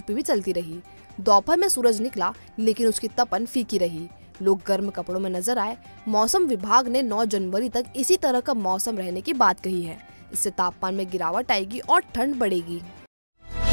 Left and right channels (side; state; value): both; inverted; correlation -1.00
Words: भी चलती रही। दोपहर में सूरज निकला, लेकिन उसकी तपन फीकी रही। लोग गर्म कपड़ों में नजर आए। मौसम विभाग ने 9 जनवरी तक इसी तरह का मौसम रहने की बात कही है। इससे तापमान में गिरावट आएगी और ठंड बढ़ेगी।